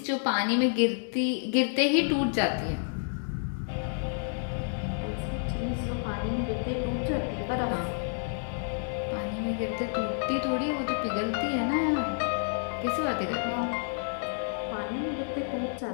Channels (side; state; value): right; silent; digital silence